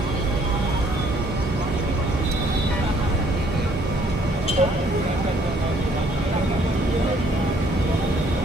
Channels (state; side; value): normal; both; correlation 0.63